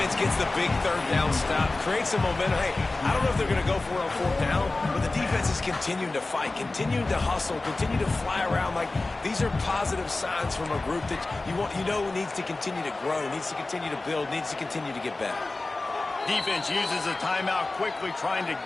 gets the big 3rd down stop, creates some momentum. Hey, I don't know if they're going to go for it on 4th down, but the defense is continuing to fight, continuing to hustle, continue to fly around. Like, these are positive signs from a group that you know needs to continue to grow, needs to continue to build, needs to continue to get better. Defense uses a timeout quickly, trying to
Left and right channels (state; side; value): quieter; right; 3.2 dB